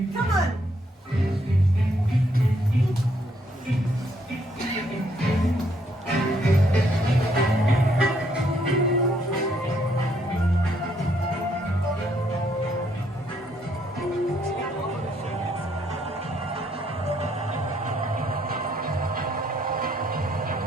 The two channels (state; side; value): normal; both; correlation 0.71